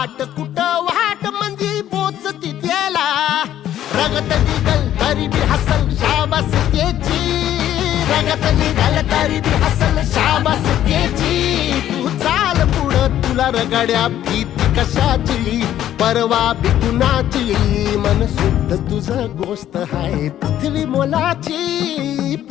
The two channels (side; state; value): right; quieter; 11.8 dB